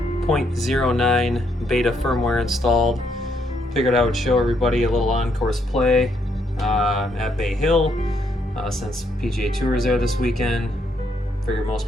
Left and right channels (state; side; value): normal; both; correlation 0.74